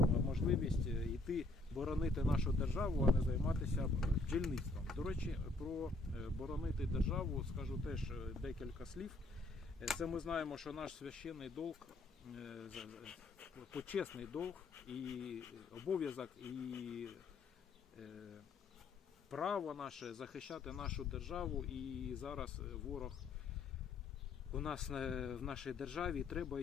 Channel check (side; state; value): right; quieter; 3.1 dB